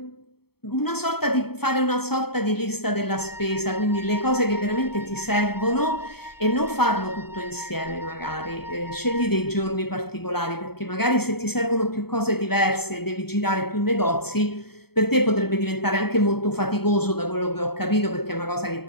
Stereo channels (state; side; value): late; right; 0.96 ms